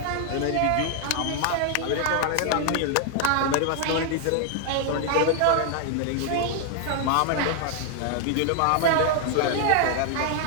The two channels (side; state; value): both; different; correlation 0.00